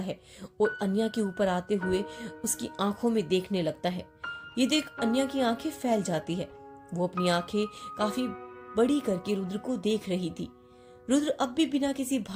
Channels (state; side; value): identical; both; correlation 1.00